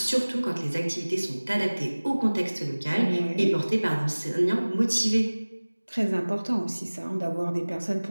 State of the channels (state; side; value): inverted; both; correlation -1.00